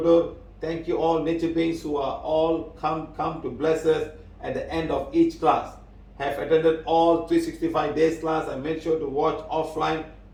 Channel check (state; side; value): identical; both; correlation 1.00